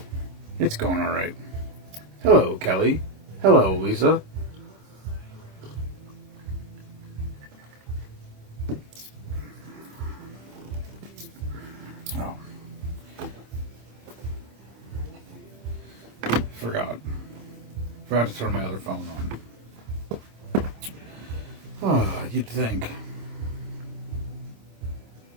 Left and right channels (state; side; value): late; left; 26 ms